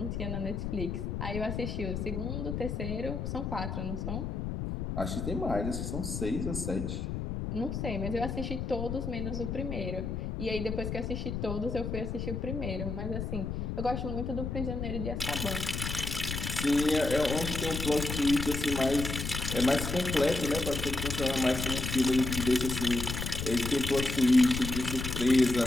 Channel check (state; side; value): noise; left; rumble, 3 dB below the sound